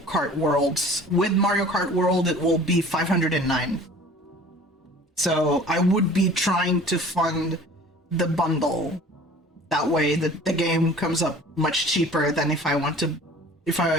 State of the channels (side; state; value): both; normal; correlation 0.46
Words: World. With Mario Kart World, it will be 509. So I would be trying to fund the bundle. That way the game comes up much cheaper than if I